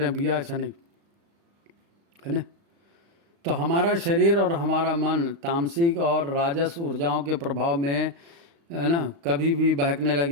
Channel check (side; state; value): left; late; 35 ms